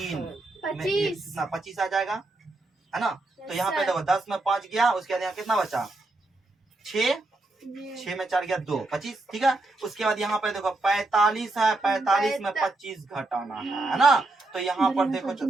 में 25 कितना 25 आ जाएगा, है ना। तो यहाँ पे देखो 10 में 5 गया, उसके बाद यहाँ कितना बचा, 6 में 4 गया 2, 25, ठीक है। उसके बाद यहाँ पे देखो 45 है, 45 में 25 घटाना है ना। तो यहाँ पर देखो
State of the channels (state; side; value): quieter; left; 3.0 dB